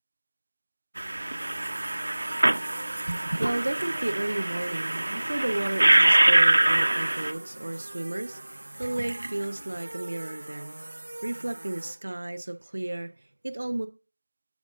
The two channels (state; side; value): inverted; both; correlation -1.00